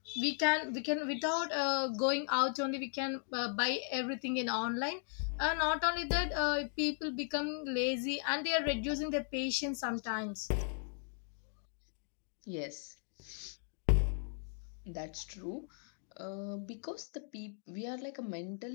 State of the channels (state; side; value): silent; right; 53 dB below the other